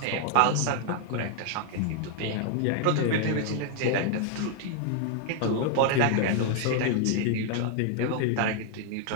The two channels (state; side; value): different; both; correlation 0.00